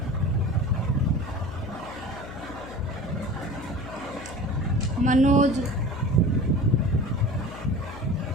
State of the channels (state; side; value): noise; left; hum, 13 dB below the sound